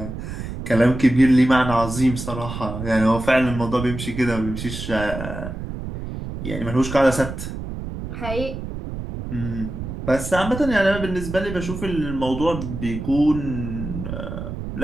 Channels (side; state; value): right; noise; rumble, 7 dB below the sound